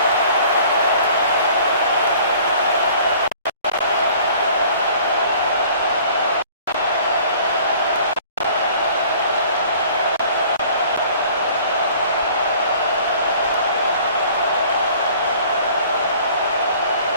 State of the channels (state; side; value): inverted; both; correlation -0.51